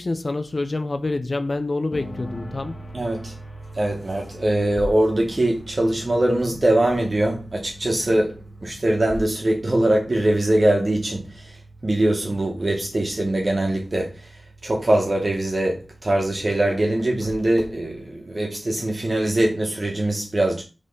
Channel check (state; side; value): normal; both; correlation 0.97